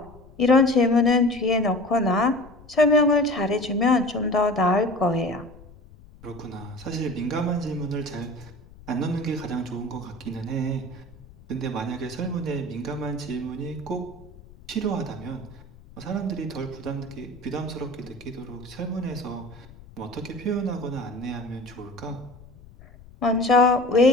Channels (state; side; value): noise; left; rumble, 21 dB below the sound